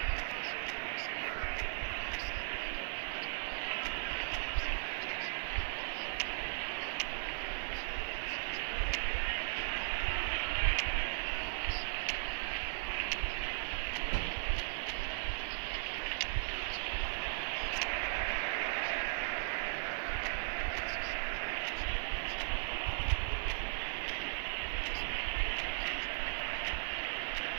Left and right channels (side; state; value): left; silent; digital silence